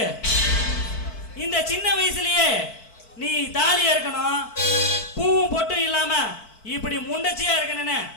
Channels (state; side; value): late; right; 4.5 ms